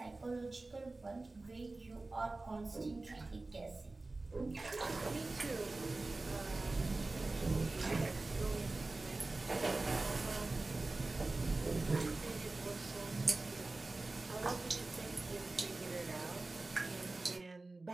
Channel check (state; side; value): quieter; left; 3.2 dB